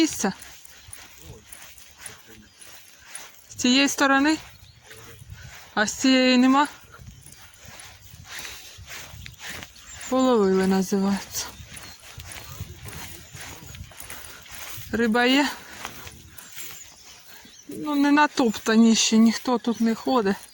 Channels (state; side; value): identical; both; correlation 1.00